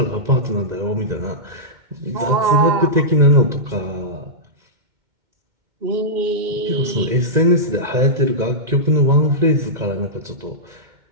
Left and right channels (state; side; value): late; left; 2.1 ms